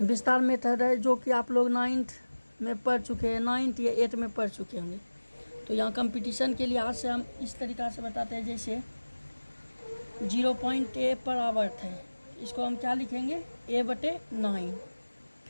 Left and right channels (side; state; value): both; inverted; correlation -1.00